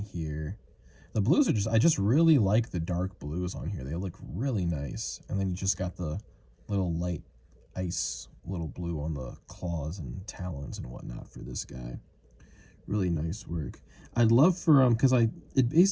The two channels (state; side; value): identical; both; correlation 1.00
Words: here. The blues are just, I just really like the dark blues on here. They look really nice. And then you just got the little light ice little blue on the claws and talons and whatnot for this guy. Really nice work. I'd love for because it